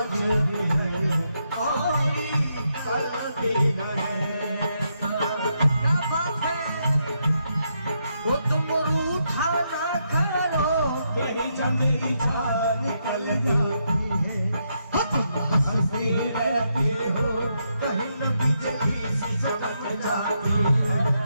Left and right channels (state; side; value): inverted; both; correlation -0.80